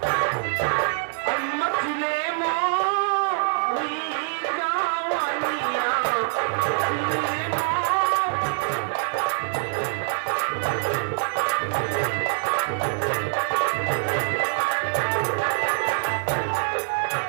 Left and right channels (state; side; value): silent; left; digital silence